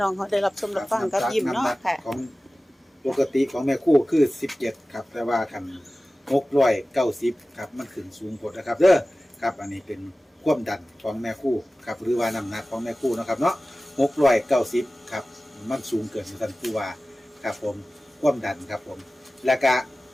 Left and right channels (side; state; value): both; normal; correlation 0.96